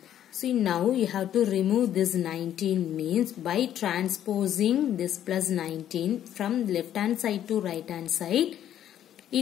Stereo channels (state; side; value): quieter; right; 10.9 dB